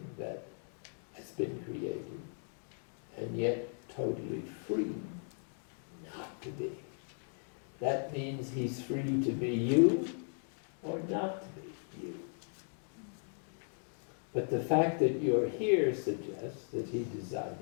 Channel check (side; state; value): right; silent; 53 dB below the other